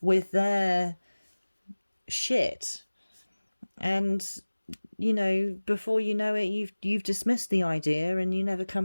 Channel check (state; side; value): inverted; both; correlation -1.00